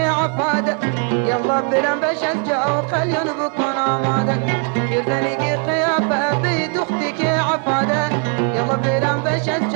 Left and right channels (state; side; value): quieter; left; 38.3 dB